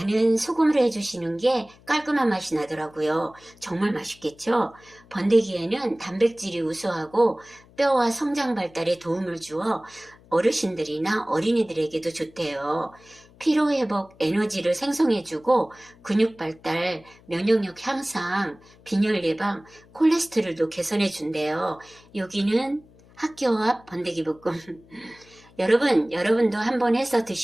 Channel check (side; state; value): left; noise; hum, 26 dB below the sound